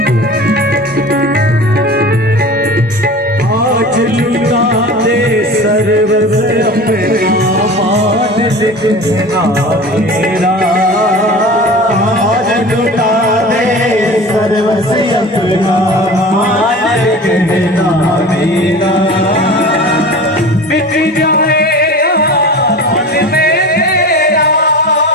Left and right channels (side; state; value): both; normal; correlation 0.36